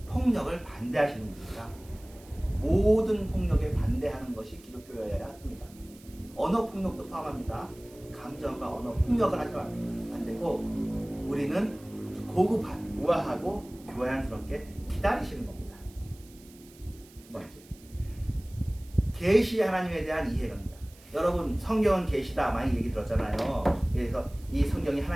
폭력을 반대하시는 분입니다. 모든 폭력에 반대하는 것이 기독교여야 합니다. 언어 폭력도 포함합니다. 감정과 언어 폭력을 하시면 안 되고 우리는 고급한, 우아하고 교양스럽게 기다리시는 겁니다. 두 번째, 계시 하나님에 대한 이해입니다. 여러분 성경은 계시다 많이 얘기 들었잖아요. 그래서 이 성경이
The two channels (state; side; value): noise; right; hiss, 24 dB below the sound